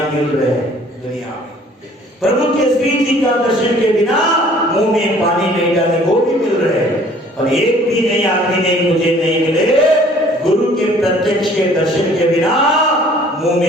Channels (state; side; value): normal; both; correlation 0.55